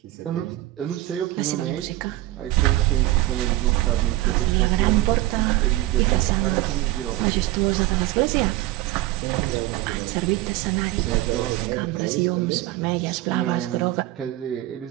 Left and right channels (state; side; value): quieter; left; 16.8 dB